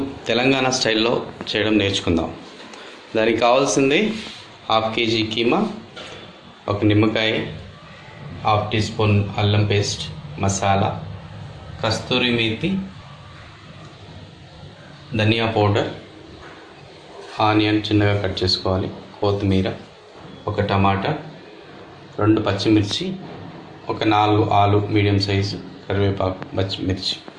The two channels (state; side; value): identical; both; correlation 1.00